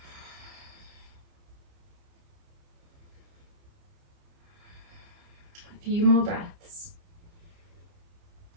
A few more breaths.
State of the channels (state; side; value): late; left; 29 ms